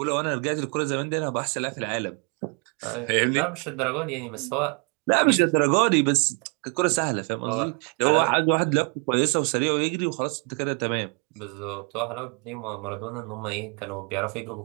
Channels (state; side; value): quieter; left; 35.5 dB